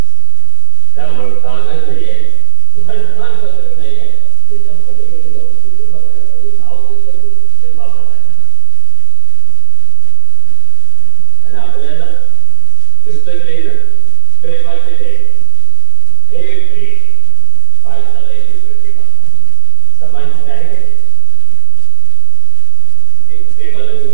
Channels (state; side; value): different; both; correlation 0.00